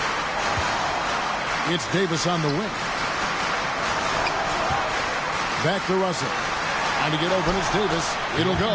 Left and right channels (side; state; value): both; identical; correlation 1.00